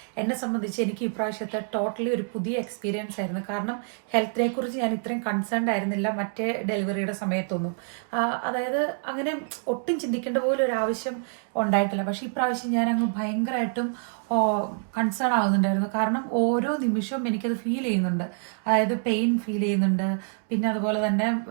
എന്നെ സംബന്ധിച്ച് എനിക്ക് ഇപ്രാവശ്യത്തെ ടോട്ടലി ഒരു പുതിയ എക്സ്പീരിയൻസ് ആയിരുന്നു. കാരണം ഹെൽത്തിനെ കുറിച്ച് ഞാൻ ഇത്രയും കൺസേൺഡ് ആയിരുന്നില്ല മറ്റേ ഡെലിവറിയുടെ സമയത്തൊന്നും. അതായത് അങ്ങനെ ഒട്ടും ചിന്തിക്കേണ്ട പോലും ഒരു ആവശ്യം ഉണ്ടായിട്ടില്ല. പക്ഷെ ഇപ്രാവശ്യം ഞാൻ അങ്ങ് ഭയങ്കരമായിട്ടും കൺസേൺ ആവുന്നുണ്ടായിരുന്നു. കാരണം ഓരോ നിമിഷവും എനിക്കത് ഫീൽ ചെയ്യുന്നുണ്ട്. അതായത് പെയിൻ ഫീൽ ചെയ്യുന്നുണ്ട്. പിന്നെ അതുപോലെ തന്നെ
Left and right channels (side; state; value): left; silent; 60 dB below the other